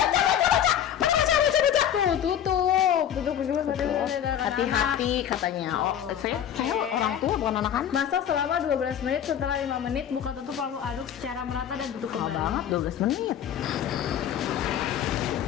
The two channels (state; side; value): quieter; right; 9.7 dB